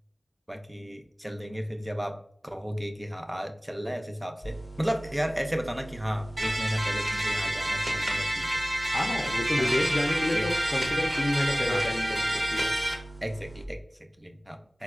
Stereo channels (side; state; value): both; normal; correlation 0.98